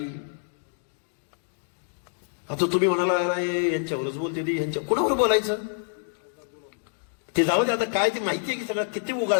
आता तुम्ही म्हणाला यांच्यावरच बोलते ती, यांच्या कुणावर बोलायचं ते जाऊ दे. आता काय ते माहितीये की सगळं किती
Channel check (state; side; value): silent; right; digital silence